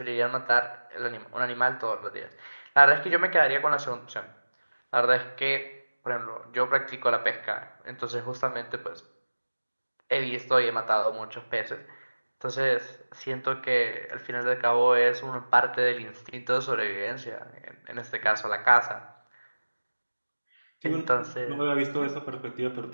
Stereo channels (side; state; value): both; inverted; correlation -1.00